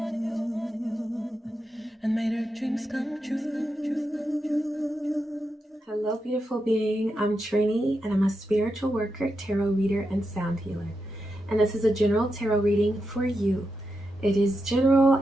and made her dreams come true. Hello, beautiful being. I'm Trini, and I'm a spiritual worker, tarot reader, and sound healer. And this is a general tarot reading for you. It is general,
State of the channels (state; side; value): normal; both; correlation 0.87